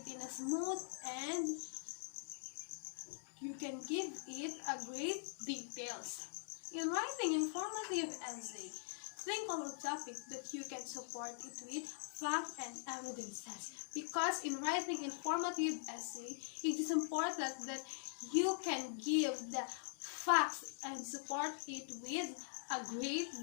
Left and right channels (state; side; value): silent; right; digital silence